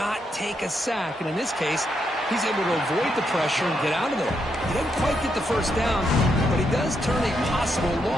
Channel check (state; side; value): normal; both; correlation 0.80